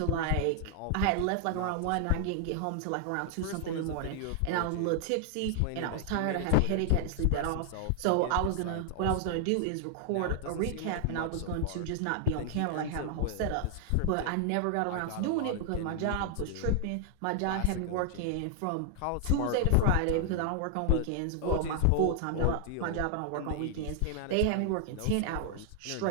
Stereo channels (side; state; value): both; different; correlation 0.00